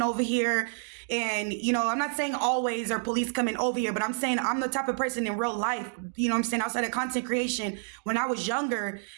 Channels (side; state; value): left; silent; digital silence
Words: over here. And, I'm not saying always or police coming over here, but I'm saying I'm the type of person in real life, I'm saying, outside of content creation, when I was younger,